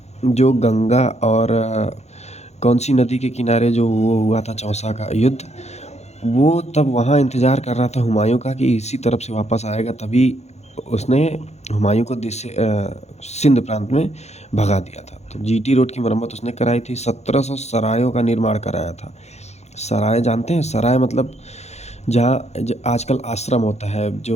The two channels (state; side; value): late; right; 0.32 ms